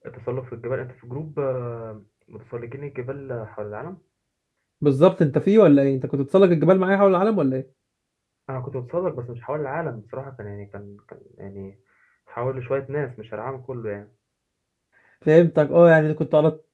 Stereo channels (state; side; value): identical; both; correlation 1.00